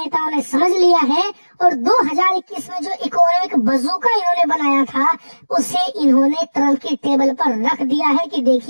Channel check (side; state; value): both; inverted; correlation -1.00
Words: ने समझ लिया है और 2021 में जो इकोनॉमिक बजूका इन्होंने बनाया था उसे इन्होंने ट्रंप की टेबल पर रख दिया है कि